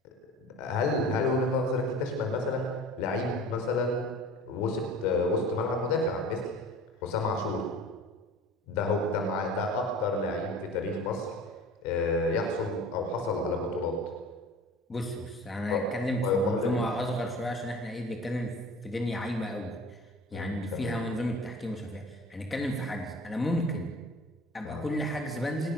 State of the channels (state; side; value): normal; both; correlation 0.41